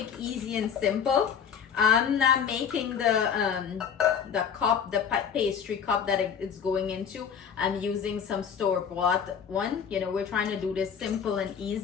easy, and simple. I'm not making the cup, the pastry cup that it's going into. I'm using some store-bought one. You know, we're trying to do this simple and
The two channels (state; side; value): quieter; right; 7.4 dB